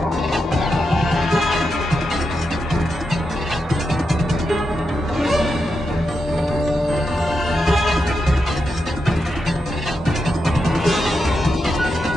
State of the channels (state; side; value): normal; both; correlation 0.86